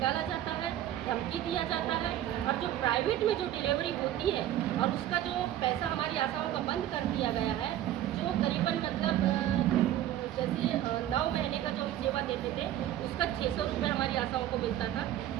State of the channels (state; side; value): quieter; left; 12.4 dB